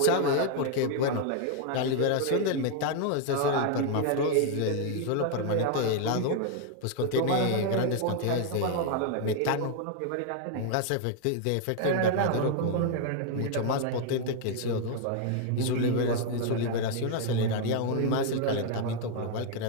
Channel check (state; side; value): different; both; correlation 0.00